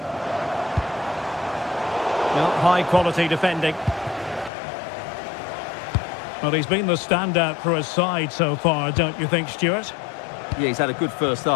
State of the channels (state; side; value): drops out; right; at 4.5 s